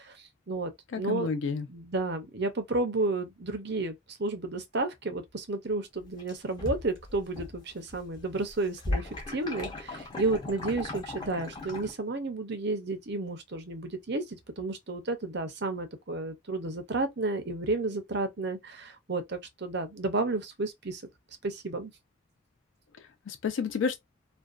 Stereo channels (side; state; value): both; normal; correlation 0.15